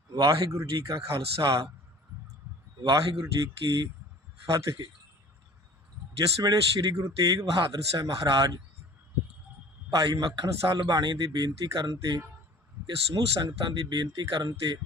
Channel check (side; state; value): both; normal; correlation 0.46